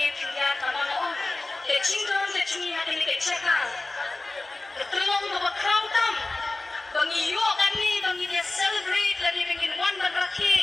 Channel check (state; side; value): quieter; right; 3.0 dB